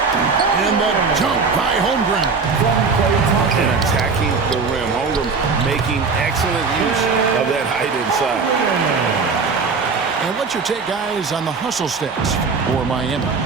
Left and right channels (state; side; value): quieter; left; 4.8 dB